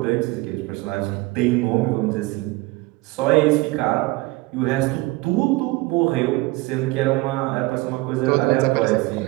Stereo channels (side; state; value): left; quieter; 21.8 dB